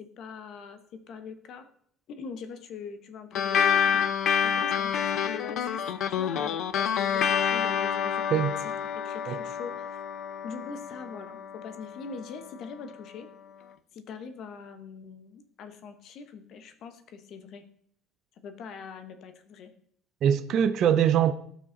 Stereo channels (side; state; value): both; normal; correlation 0.52